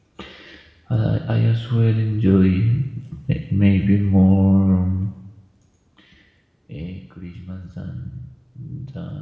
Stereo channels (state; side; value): identical; both; correlation 1.00